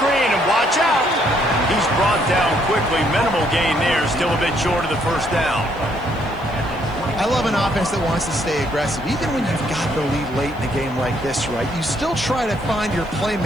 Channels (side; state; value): left; noise; hiss, 29 dB below the sound